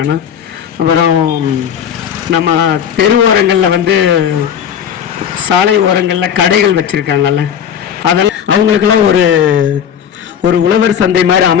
அப்புறம் நம்ம தெரு ஓரங்களில் வந்து சாலை ஓரங்களில் கடைகள் வச்சுருக்காங்கல்ல, அதெல்லாம் அவங்களுக்கெல்லாம் ஒரு உழவர் சந்தை மாதிரி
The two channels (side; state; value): right; quieter; 8.6 dB